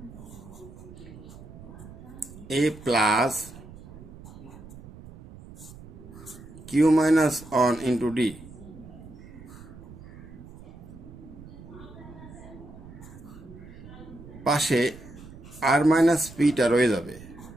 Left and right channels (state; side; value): noise; right; rumble, 17 dB below the sound